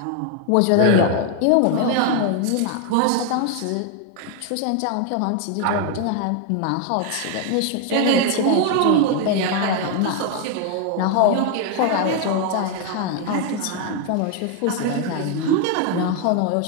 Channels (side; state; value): both; different; correlation 0.01